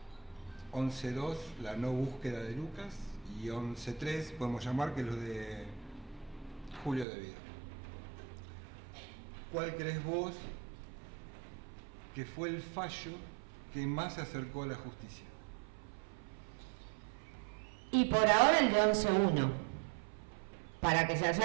11-2, la no búsqueda de Lucas, y 11-3, podemos llamar, que es lo de Julio De Vido. ¿Cuál crees vos que fue el fallo que más se acercó a la justicia? Y por ahora el de 11-1. Para que se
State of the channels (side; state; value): left; drops out; at 7.1 s